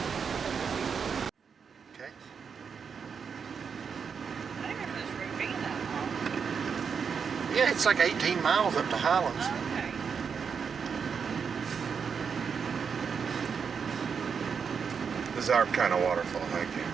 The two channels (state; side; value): quieter; left; 6.3 dB